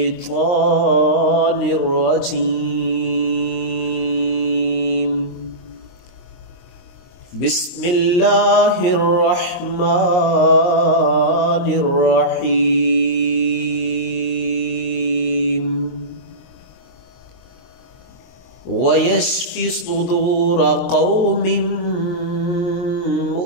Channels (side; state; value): right; late; 22 ms